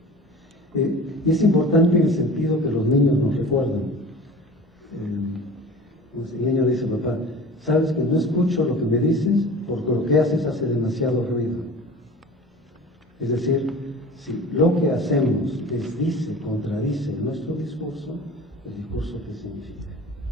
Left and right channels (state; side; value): normal; both; correlation 0.39